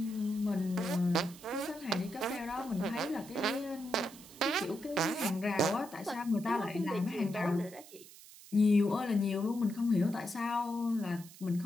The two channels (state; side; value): noise; right; hiss, 19 dB below the sound